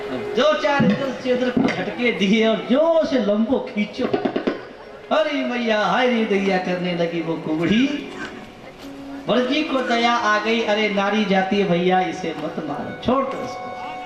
दो चार इधर से उधर झटके दिए और जोर से लंबो खींचो। अरे मैया, हाय रे दैया करने लगी वो कुबड़ी। वर्जी को दया आ गई, अरे नारी जाती है भैया, इसे मत मारो, छोड़ दो उसको।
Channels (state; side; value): identical; both; correlation 1.00